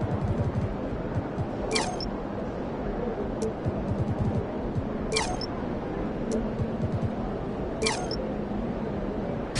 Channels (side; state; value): both; identical; correlation 1.00